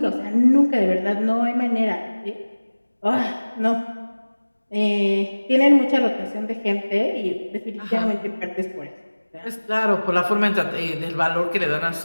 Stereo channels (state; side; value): inverted; both; correlation -1.00